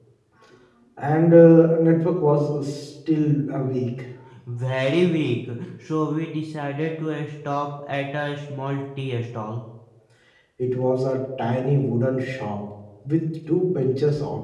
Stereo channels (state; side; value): identical; both; correlation 1.00